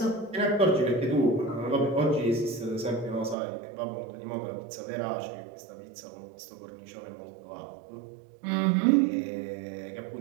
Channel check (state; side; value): drops out; left; at 3.4 s